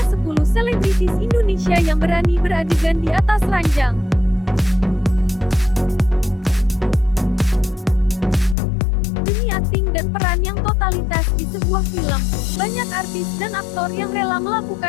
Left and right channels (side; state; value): right; drops out; at 8.6 s